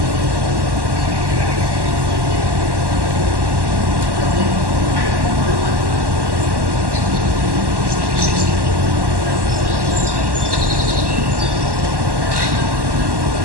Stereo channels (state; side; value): late; left; 1.1 ms